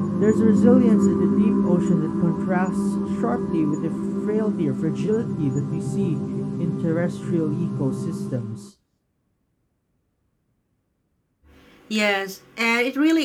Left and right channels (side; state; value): both; identical; correlation 1.00